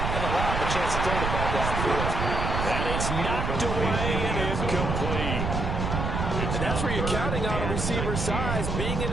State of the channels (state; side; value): noise; right; rumble, 1 dB below the sound